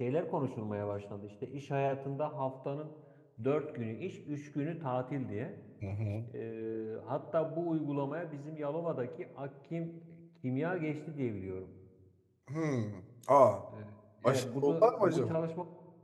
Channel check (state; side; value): identical; both; correlation 1.00